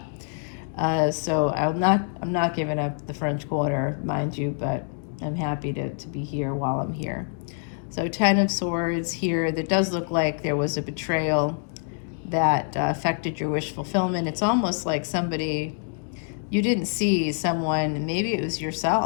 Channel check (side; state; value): right; silent; 61 dB below the other